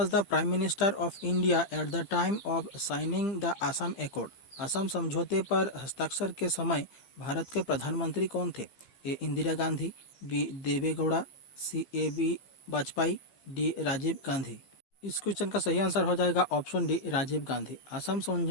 the prime minister of India at the time of signing the Assam accord? Assam समझौते पर हस्ताक्षर के समय भारत के प्रधानमंत्री कौन थे? ए Indira Gandhi, B Deve Gowda, C AB Vajpayee, D Rajiv Gandhi. इस क्वेश्चन का सही आंसर हो जाएगा ऑप्शन डी राजीव गांधी। असम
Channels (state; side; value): late; right; 15 ms